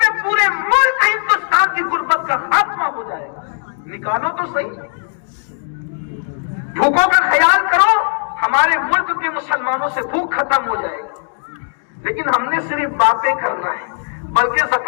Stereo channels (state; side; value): silent; right; digital silence